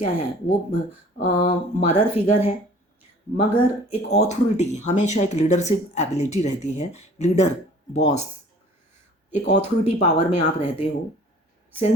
है, वो मदर फिगर है, मगर एक ऑथोरिटी, हमेशा एक लीडरशिप एबिलिटी रहती है, लीडर, बॉस, एक ऑथोरिटी पावर में आप रहते हो।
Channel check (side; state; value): both; normal; correlation 0.50